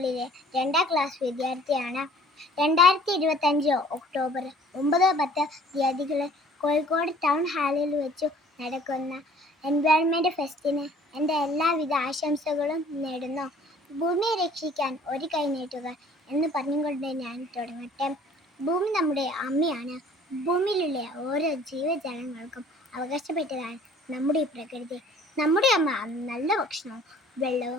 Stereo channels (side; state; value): both; normal; correlation 0.53